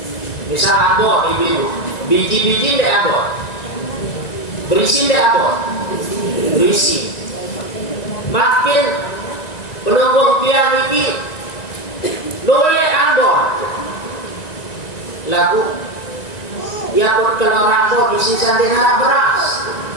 Misal ambon ibu, biji-biji deh ambon, berisi deh ambon, berisi. Makin penunggu tiang ini luwe ambon, lagu ya pun kalau rambut isi sandera beras,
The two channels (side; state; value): right; late; 1.9 ms